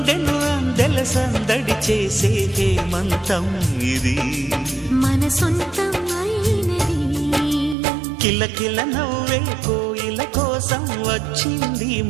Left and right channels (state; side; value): drops out; left; at 7.8 s